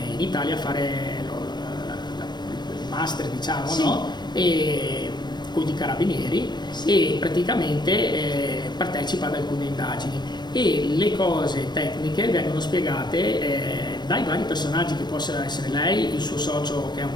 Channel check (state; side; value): late; right; 0.21 ms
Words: in Italia a fare il master, diciamo, no? E con i carabinieri, e praticamente partecipa ad alcune indagini, e le cose tecniche vengono spiegate dai vari personaggi, che possono essere lei, il suo socio che è